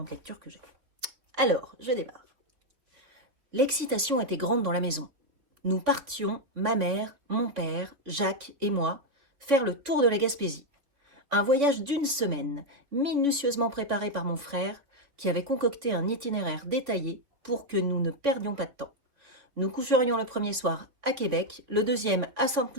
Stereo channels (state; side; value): late; left; 3.5 ms